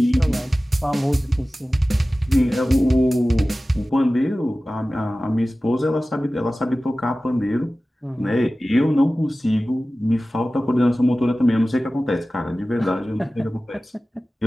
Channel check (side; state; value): both; normal; correlation 0.96